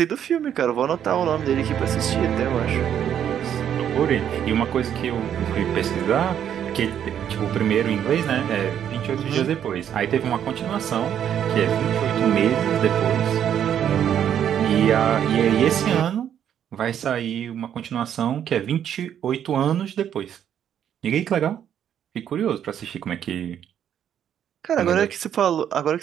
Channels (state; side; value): quieter; left; 9.5 dB